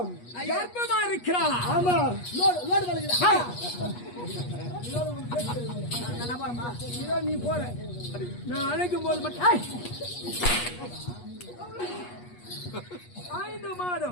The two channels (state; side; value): late; right; 8.3 ms